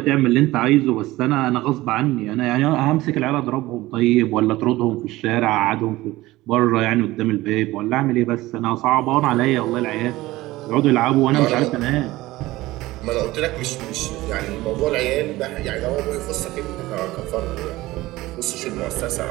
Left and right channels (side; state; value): left; quieter; 18.3 dB